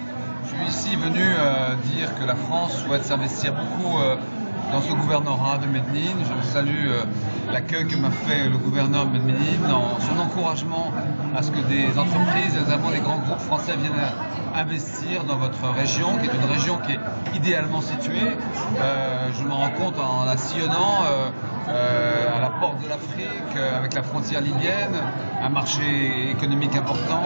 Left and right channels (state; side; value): inverted; both; correlation -1.00